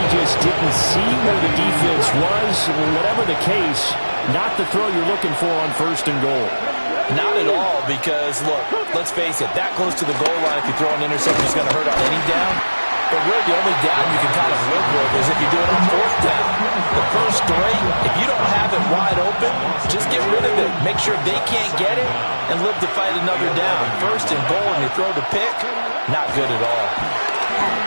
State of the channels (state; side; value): inverted; both; correlation -1.00